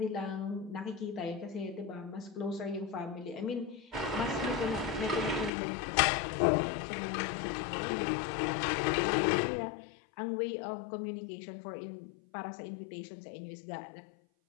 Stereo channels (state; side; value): drops out; right; at 5.5 s